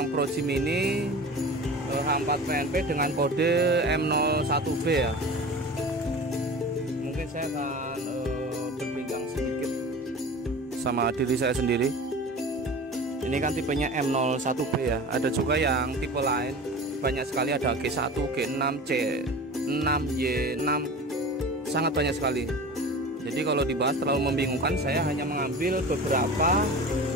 Proji Mini H4 PNP dengan kode M01B ya. Mungkin saya akan berpegang sedikit sama diri saya sendiri. Ini kan tipenya M01B ya. Ada juga yang tipe lain, banyak sekali, ada G1, G6, C6, Y6, sangat banyak sekali. Jadi kalau dibahas terlalu membingungkan, saya hanya mengambil beberapa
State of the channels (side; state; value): both; normal; correlation 0.36